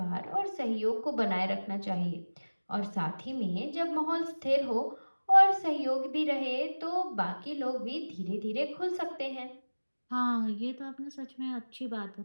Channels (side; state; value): both; inverted; correlation -1.00